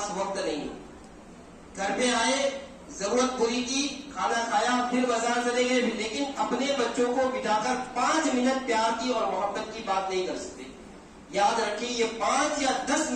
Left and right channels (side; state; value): both; identical; correlation 1.00